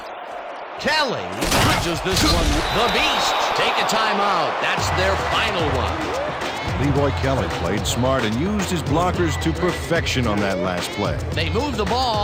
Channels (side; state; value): both; identical; correlation 1.00